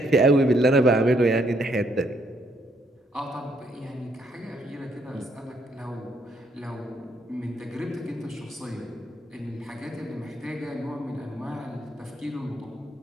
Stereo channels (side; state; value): both; normal; correlation 0.71